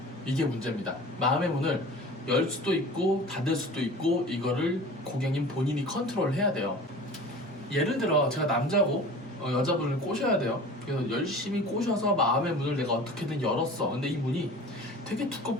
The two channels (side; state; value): both; normal; correlation 0.40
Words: 이게 문제입니다. 마음의 문을 열 수도 있고 닫을 수도 있고, 이거를 고객님 본인이 컨트롤 해야 돼요. 예를 들어 제가 남자고 여자분을 꼬셔야 돼요. 그래서 열심히 꼬셔서 마음의 문을 내가 어떻게든 열었어. 근데 이 문이 되게